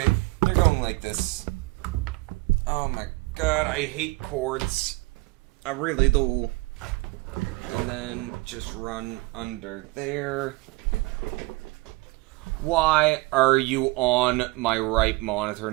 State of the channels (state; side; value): quieter; left; 22.8 dB